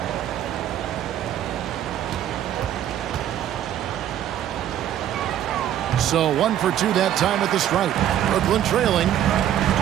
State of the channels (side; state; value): left; quieter; 11.1 dB